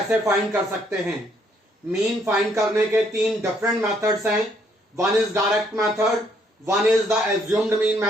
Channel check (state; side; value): normal; both; correlation 0.69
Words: फाइंड कर सकते हैं। मीन फाइंड करने के 3 डिफरेंट मेथड्स हैं। One is direct method, one is the assumed mean